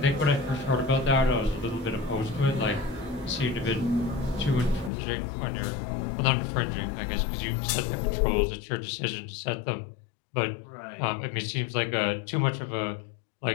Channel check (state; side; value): drops out; right; at 4.9 s